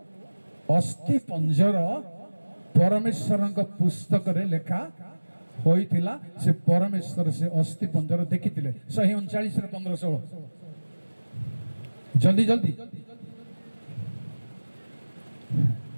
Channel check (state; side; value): inverted; both; correlation -1.00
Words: ଅସ୍ଥି ପଞ୍ଜର ପରମେଶ୍ୱରଙ୍କ ପୁସ୍ତକରେ ଲେଖା ହୋଇଥିଲା। ସେ ପରମେଶ୍ୱର ସେ ଅସ୍ଥି ପଞ୍ଜର ଦେଖିଥିଲେ। 139 15-16 ଜଲ୍ଦି ଜଲ୍ଦି।